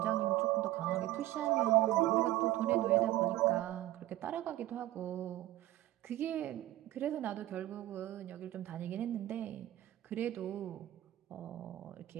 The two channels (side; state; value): left; quieter; 15.3 dB